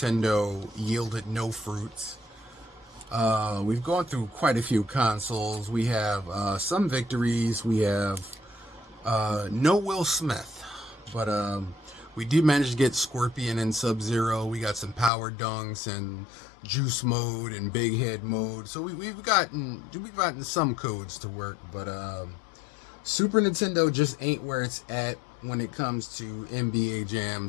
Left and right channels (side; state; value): right; drops out; at 15.1 s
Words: yielded no fruits. We've gone through quite a few consoles. We have some victories. We have no Will Smith, but we did manage to get Scorpion and Sub-Zero. We got some Power Dunks and Juice Mode and Big Head Mode. So we've gotten some codes to work, but Super Nintendo just ain't where it's at when it comes to NBA